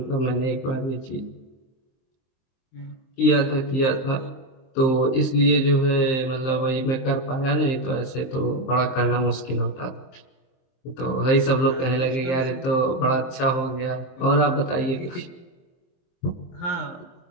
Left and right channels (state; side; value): late; right; 23 ms